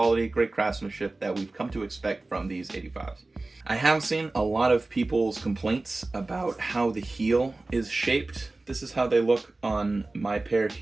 great craftsmanship that we've come to expect from these 85s. I have seen a lot of people's complaints about how the heel is shaped. This is how they look on my pair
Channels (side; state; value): left; quieter; 3.1 dB